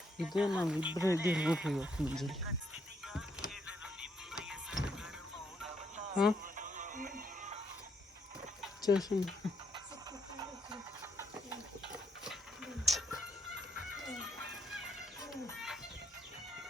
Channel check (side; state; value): both; normal; correlation 0.74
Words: ಇದೇ ನಾವು ಇಬ್ಬರೇ ಇದ್ದೀವಿ ನೋಡ್ರಿ ಇವತ್ತು ಮುಂಜಾನೆ. ಹಾಂ ಚೇಷನ್